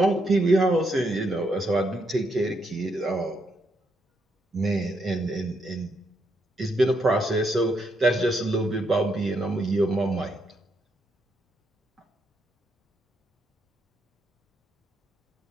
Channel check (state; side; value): normal; both; correlation 0.78